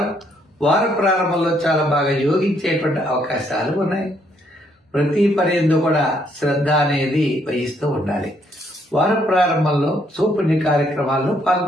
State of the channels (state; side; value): normal; both; correlation 0.71